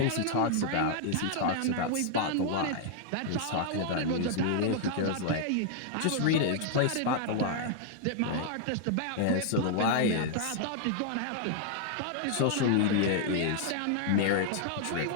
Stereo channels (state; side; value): different; both; correlation -0.01